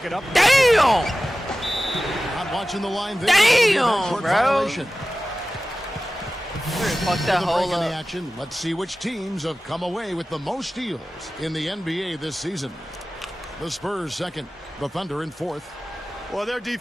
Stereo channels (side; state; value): both; normal; correlation 0.95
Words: it up. Damn. Not watching the line there. Damn, Court bro. violation. Fuck that The break whole in the up. action. Let's see which teams have come away with the most steals in the NBA this season. The Spurs second, the Thunder in fourth. Well, they're